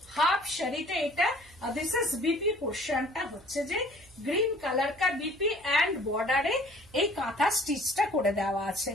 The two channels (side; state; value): right; noise; hum, 26 dB below the sound